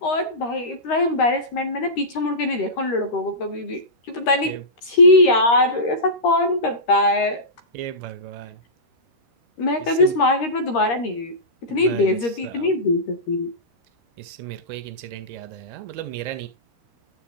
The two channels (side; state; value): right; late; 13 ms